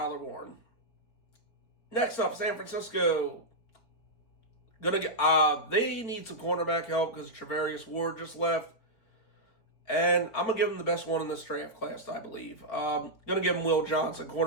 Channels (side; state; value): right; late; 4.4 ms